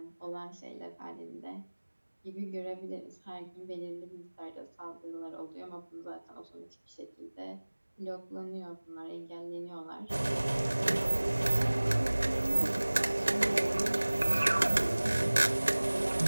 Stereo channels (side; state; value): both; inverted; correlation -1.00